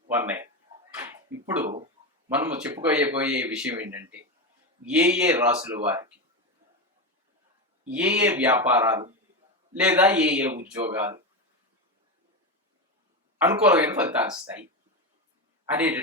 ఇప్పుడు మనము చెప్పుకోబోయే విషయం ఏంటంటే, ఏ రాసుల వారికి ఏ వ్యాపారాలు లేదా ఏ ఉద్యోగాలు అనుకూలమైన ఫలితాలు ఇస్తాయి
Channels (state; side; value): normal; both; correlation 0.15